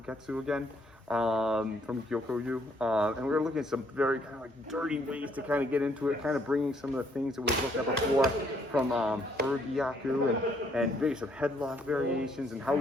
again from Gyokoryu. And we're looking at some very kind of like dirty ways to kind of get into it, kind of bringing some of the things that we've looked at before from Urgyaku and maybe some headlock variations and how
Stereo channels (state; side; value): normal; both; correlation 0.68